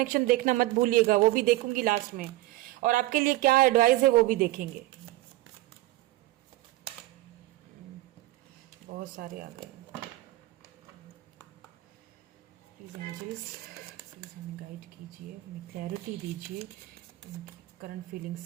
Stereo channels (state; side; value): quieter; left; 18.0 dB